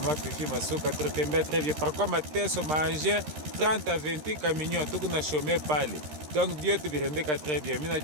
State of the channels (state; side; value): late; left; 13 ms